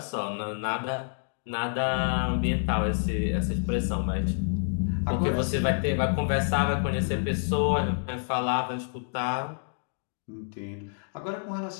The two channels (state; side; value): silent; right; digital silence